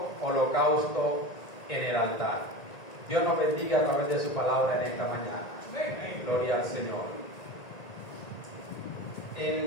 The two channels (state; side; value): late; right; 1.9 ms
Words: holocausto en el altar. Dios nos bendiga a través de su palabra en esta mañana. Amén. Gloria al Señor.